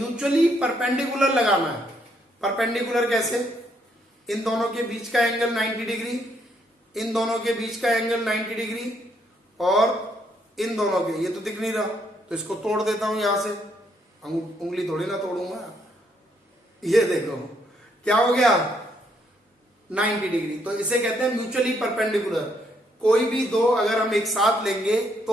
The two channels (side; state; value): both; normal; correlation 0.72